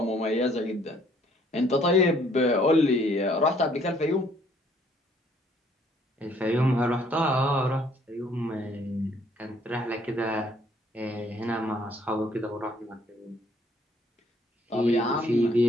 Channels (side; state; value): both; normal; correlation 0.63